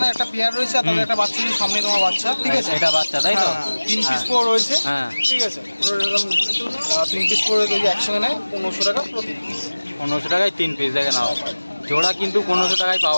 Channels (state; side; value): inverted; both; correlation -1.00